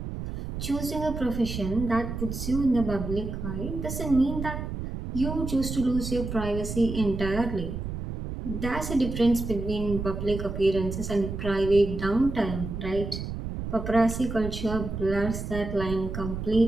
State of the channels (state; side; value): noise; right; rumble, 6 dB below the sound